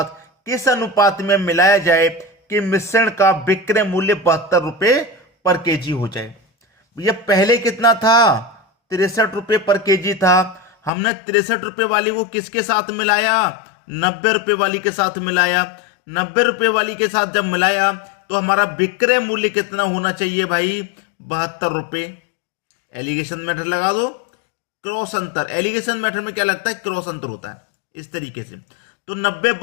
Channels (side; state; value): right; drops out; at 10.9 s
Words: किस अनुपात में मिलाया जाए कि मिश्रण का विक्रय मूल्य 72 रुपए पर केजी हो जाए। ये पहले कितना था? 63 रुपए पर केजी था। हमने 63 रुपए वाली को किसके साथ मिलाया? 90 रुपए वाली के साथ मिलाया। 90 रुपए वाली के साथ जब मिलाया तो हमारा विक्रय मूल्य कितना होना चाहिए भाई? 72 रुपए। एलिगेशन मेथड लगा दो, क्रॉस अंतर। एलिगेशन मेथड में क्या लगता है? क्रॉस अंतर होता है इस तरीके से। तो 90